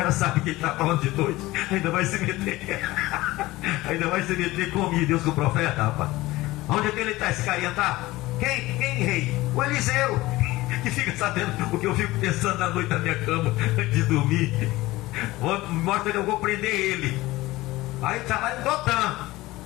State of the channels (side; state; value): right; quieter; 18.8 dB